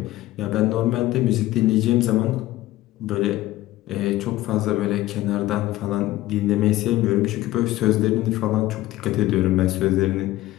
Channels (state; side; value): quieter; right; 16.2 dB